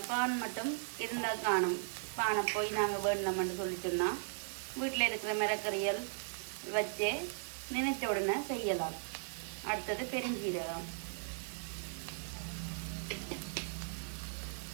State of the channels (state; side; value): silent; left; digital silence